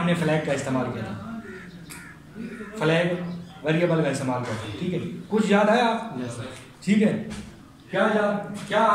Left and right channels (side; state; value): both; identical; correlation 1.00